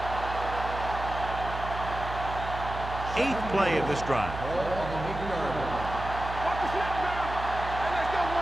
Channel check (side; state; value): right; noise; hum, 8 dB below the sound